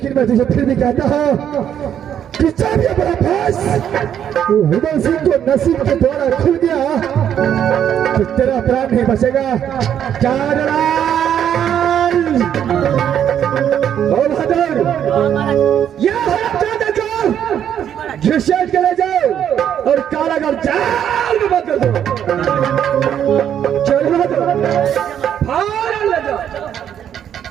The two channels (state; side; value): quieter; left; 9.5 dB